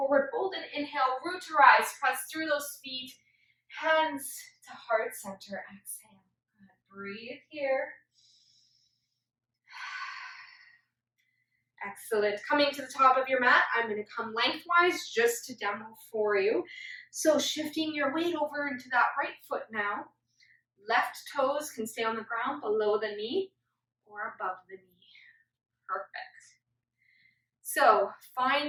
fold, and inhale, root to rise. Press through those feet, hands to heart center. Exhale. Good. Breathe here. Excellent. Coming to the top of your mat, I'm going to come lengthwise just to demo for you. So shifting your weight over into that right foot now. Left toes can stay on the ground below the knee or above the knee. Perfect. So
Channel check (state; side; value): identical; both; correlation 1.00